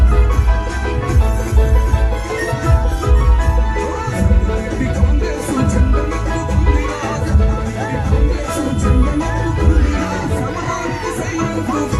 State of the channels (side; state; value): both; identical; correlation 1.00